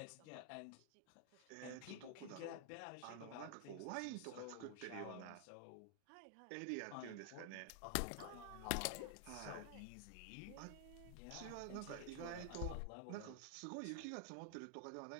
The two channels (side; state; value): both; different; correlation 0.00